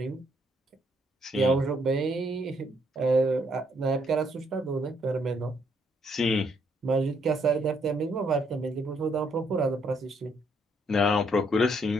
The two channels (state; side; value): normal; both; correlation 0.71